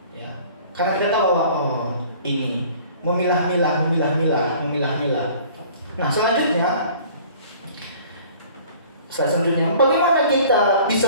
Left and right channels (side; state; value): both; inverted; correlation -0.50